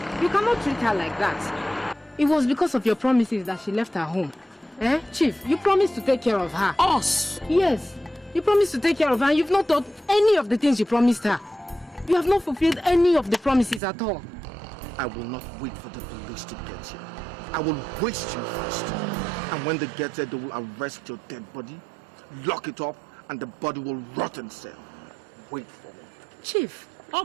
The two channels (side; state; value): left; drops out; at 13.8 s